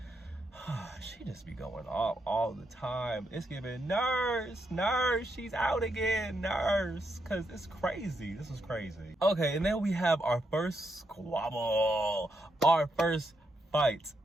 She just be going off all the time. It's giving nurse, she's out again, nurse. Cause it's crazy. This is crazy. Okay, and then we have our first squabble. Our first fight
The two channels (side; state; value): both; normal; correlation 0.81